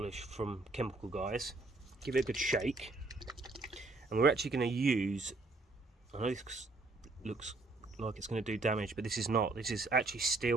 from Chemical Guys, give it a good shake, and we're actually going to use, I know this looks like it's going to do damage, but this is not. This is actually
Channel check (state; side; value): quieter; left; 3.3 dB